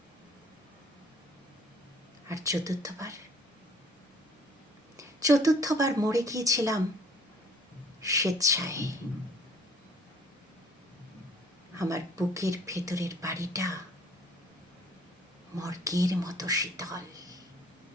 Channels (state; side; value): normal; both; correlation 0.56